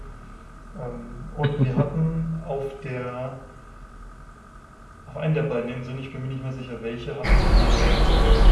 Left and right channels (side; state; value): both; identical; correlation 1.00